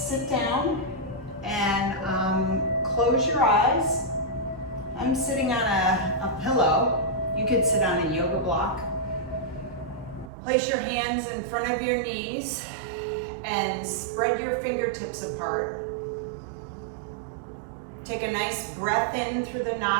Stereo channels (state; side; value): drops out; left; at 10.3 s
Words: down and close your eyes. I'm sitting on a pillow. You could sit on a yoga block. Place your hands in front of your knees and spread your fingertips apart. Take a nice breath in through the